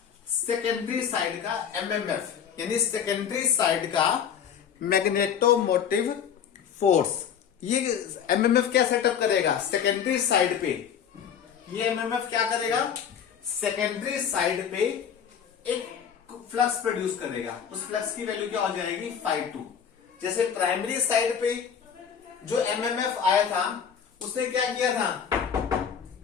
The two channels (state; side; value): quieter; right; 8.0 dB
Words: सेकेंडरी साइड का एमएमएफ, यानी सेकेंडरी साइड का मैग्नेटोमोटिव फोर्स। ये एमएमएफ क्या सेटअप करेगा सेकेंडरी साइड पे, ये एमएमएफ क्या करेगा सेकेंडरी साइड पे एक फ्लक्स प्रोड्यूस करेगा। उस फ्लक्स की वैल्यू क्या हो जाएगी φ2। जैसे प्राइमरी साइड पे जो एमएमएफ आया था उसने क्या किया था,